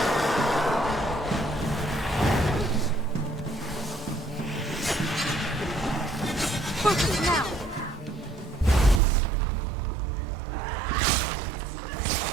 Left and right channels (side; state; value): left; drops out; at 9.0 s